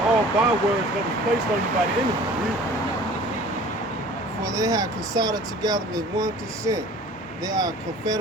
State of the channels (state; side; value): normal; both; correlation 0.46